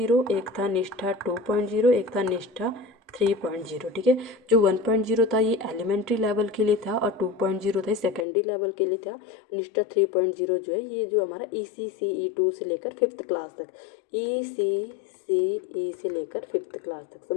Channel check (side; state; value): right; drops out; at 8.2 s